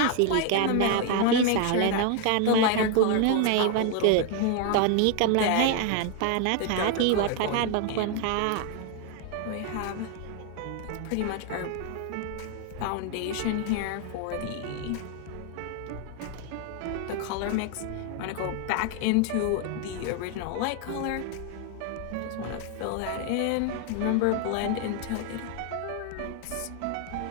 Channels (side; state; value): both; different; correlation 0.01